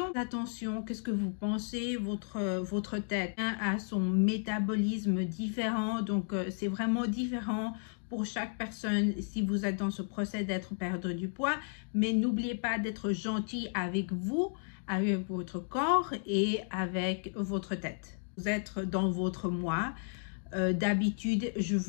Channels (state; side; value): silent; right; digital silence